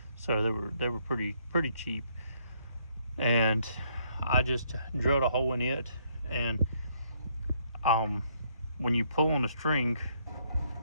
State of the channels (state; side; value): inverted; both; correlation -0.70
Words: So they were pretty cheap. And I just drilled a hole in it, and when you pull on the string,